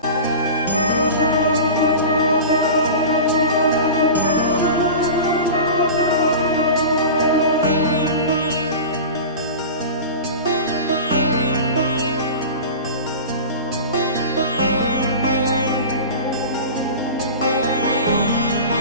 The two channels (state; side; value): inverted; both; correlation -0.32